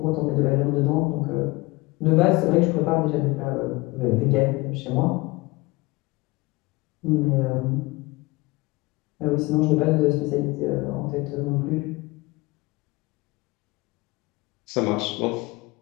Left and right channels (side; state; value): right; quieter; 22.7 dB